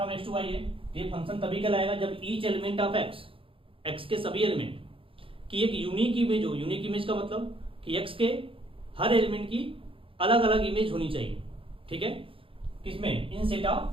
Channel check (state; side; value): late; left; 0.26 ms